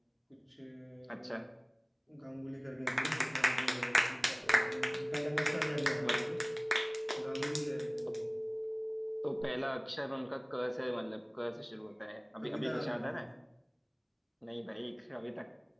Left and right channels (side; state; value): both; identical; correlation 1.00